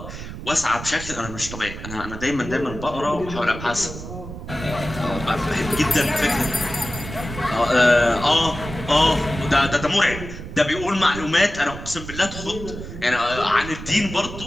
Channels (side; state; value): right; noise; rumble, 10 dB below the sound